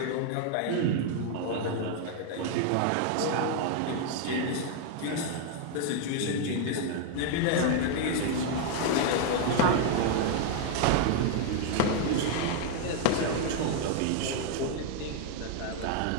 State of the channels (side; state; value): both; different; correlation 0.00